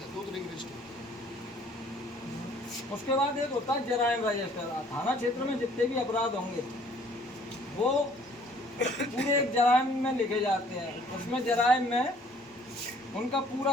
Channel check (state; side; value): normal; both; correlation 0.58